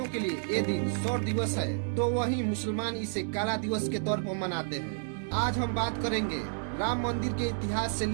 के लिए ये दिन शौर्य दिवस है, तो वहीं मुसलमान इसे काला दिवस के तौर पर मनाते हैं। आज हम बात करेंगे राम मंदिर के इतिहास से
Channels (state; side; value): silent; left; digital silence